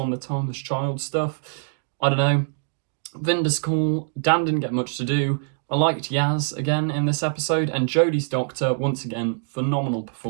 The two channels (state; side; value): silent; left; digital silence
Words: the Timeless Child stuff. I don't know. Vinda's cool. Dan didn't get much to do. I liked Yaz again in this episode, and Jodie's Doctor, once again, phenomenal